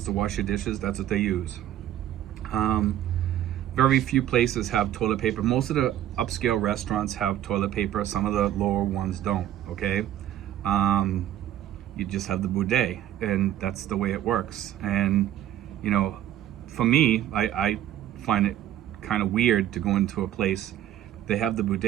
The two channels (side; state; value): left; quieter; 12.2 dB